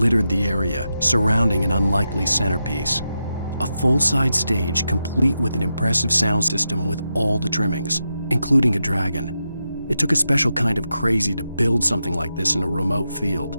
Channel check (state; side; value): inverted; both; correlation -0.87